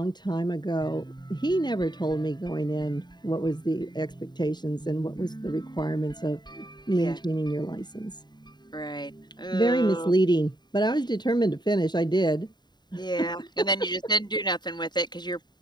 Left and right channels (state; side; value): late; right; 0.21 ms